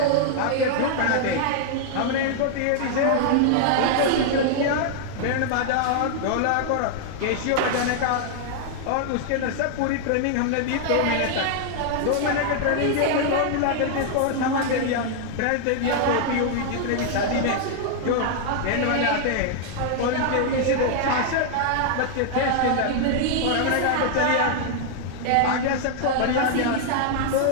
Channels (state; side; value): different; both; correlation -0.01